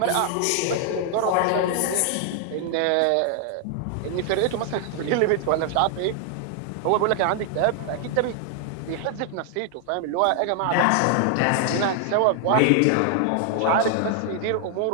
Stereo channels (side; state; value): both; different; correlation 0.00